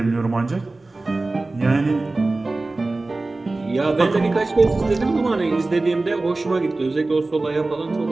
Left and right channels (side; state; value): left; quieter; 3.2 dB